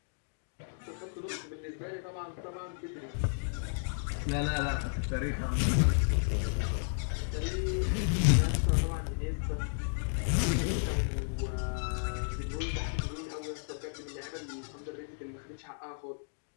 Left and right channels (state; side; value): silent; right; digital silence